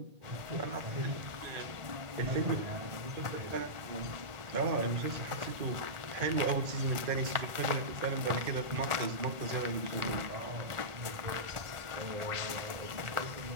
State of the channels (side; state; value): left; late; 1.4 ms